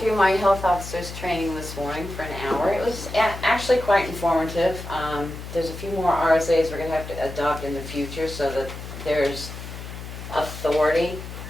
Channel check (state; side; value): noise; left; hum, 10 dB below the sound